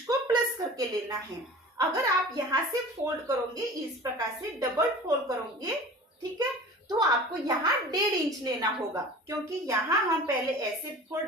को प्लस करके लेना है। अगर आप यहाँ से फोल्ड करोगे, इस प्रकार से डबल फोल्ड करोगे, ठीक है, तो आपको यहाँ 1.5 इंच लेना होगा, क्योंकि यहाँ हम पहले ऐसे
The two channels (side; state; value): both; normal; correlation 0.39